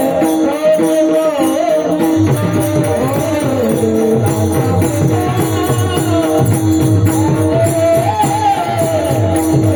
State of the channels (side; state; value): both; identical; correlation 1.00